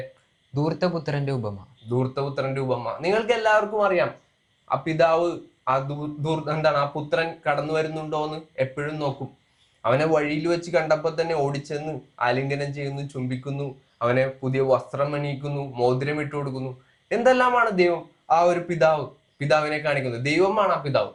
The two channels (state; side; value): identical; both; correlation 1.00